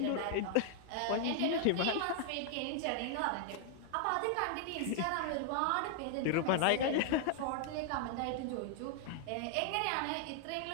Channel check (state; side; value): different; both; correlation 0.00